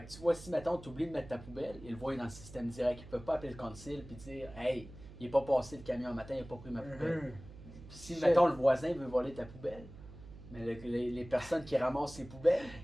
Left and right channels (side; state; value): right; noise; hum, 16 dB below the sound